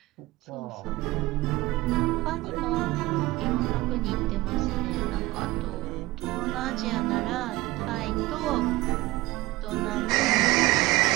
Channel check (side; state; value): left; quieter; 19.1 dB